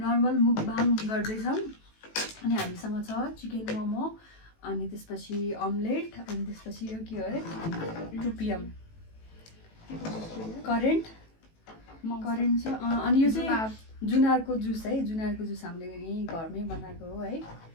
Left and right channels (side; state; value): right; late; 18 ms